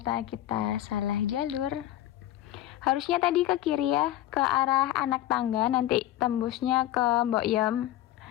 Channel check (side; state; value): right; quieter; 13.7 dB